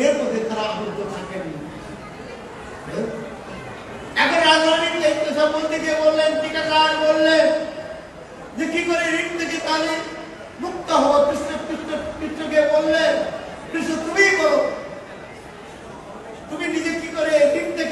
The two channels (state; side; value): identical; both; correlation 1.00